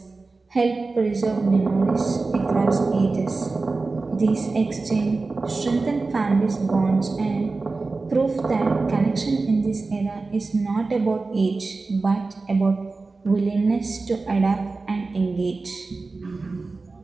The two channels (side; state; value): left; quieter; 3.8 dB